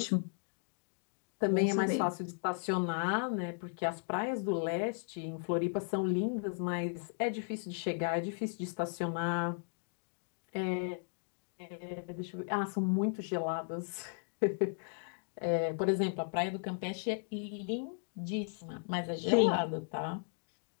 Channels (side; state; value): right; silent; digital silence